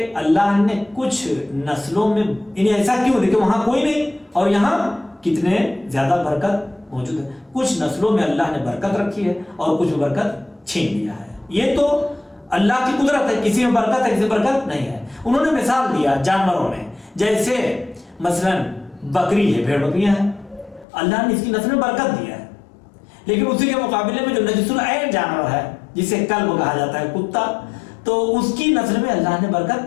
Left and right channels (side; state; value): right; drops out; at 20.9 s